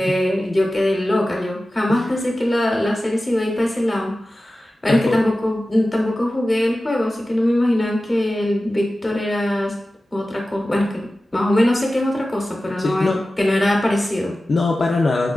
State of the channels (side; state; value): both; normal; correlation 0.95